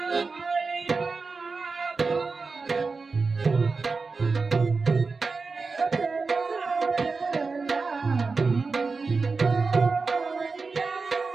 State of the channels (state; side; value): quieter; left; 4.3 dB